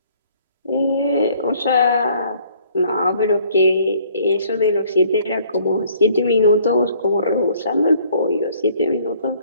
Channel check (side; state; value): both; inverted; correlation -0.60